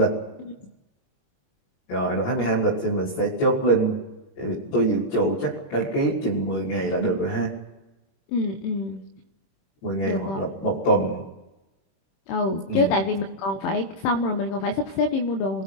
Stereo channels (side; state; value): right; late; 22 ms